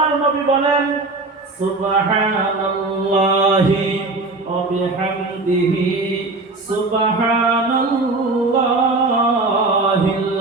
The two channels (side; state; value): left; quieter; 3.4 dB